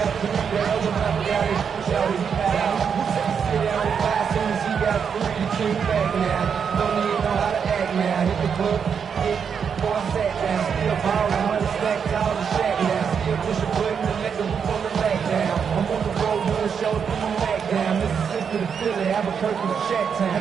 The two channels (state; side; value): quieter; left; 6.8 dB